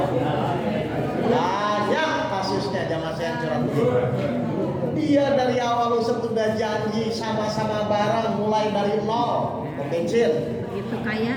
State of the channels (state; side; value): identical; both; correlation 1.00